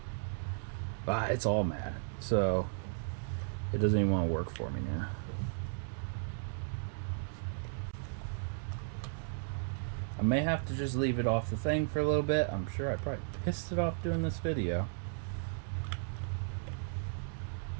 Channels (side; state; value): left; silent; digital silence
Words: It's all mad. So it doesn't even want to work for me now. I may have to just leave it off the thing for a little bit. I'm sure I probably pissed it off doing this video.